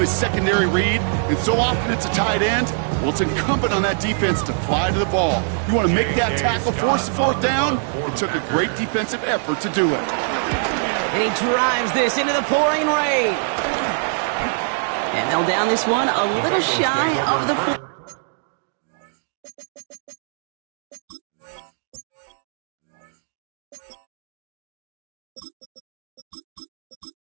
secondary read, and so often it's a tight end, well, it's incumbent on that defense to fly to the ball. You want to make that tackle, force the fourth down? It took a great defensive effort to do it. And he drives this into the pouring rain. And they'll down this one a little shy of the 4.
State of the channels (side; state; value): left; silent; digital silence